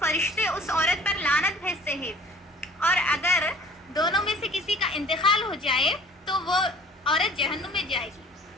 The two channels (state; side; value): normal; both; correlation 0.50